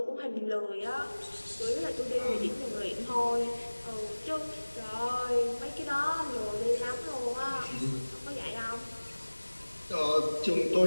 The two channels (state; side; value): inverted; both; correlation -1.00